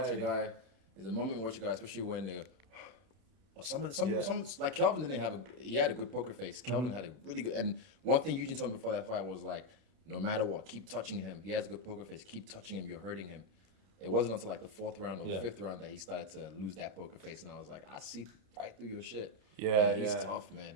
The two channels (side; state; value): left; late; 32 ms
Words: a guy. There's a moment you watch a guy, especially when they go. Or some Yeah. like Kelvin didn't have he had a good poker face. Kelvin had a really good, and one thing Eugene told me before that fight was like, no matter what, keep touching him. He has a good poker face. Keep touching him. You're hurting him. It wasn't until like the fourth round or Yeah. fifth round that he started to lose that poker face, and I was like, I see right through your shit. Yeah, He's yeah. tough,